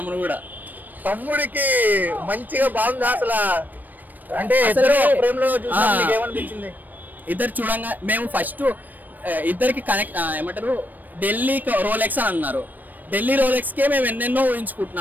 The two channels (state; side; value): late; left; 0.087 ms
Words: కూడా. తమ్ముడికి మంచిగా బాగుంది అసలు. అంటే ఏమనిపించింది? ఇద్దరు చూడంగా మేము ఫస్ట్ ఇద్దరికి కనెక్ట్ ఏమంటారు, ఢిల్లీ రోలెక్స్ అని అన్నారు. ఢిల్లీ రోలెక్స్ కే మేము ఎన్నెన్నో